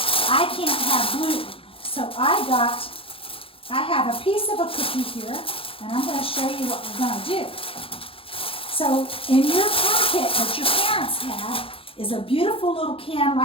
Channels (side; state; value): right; late; 0.27 ms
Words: I can't have gluten. So I have a piece of a cookie here, and I'm going to show you what we're going to do. So in your packet that your parents have is a beautiful little can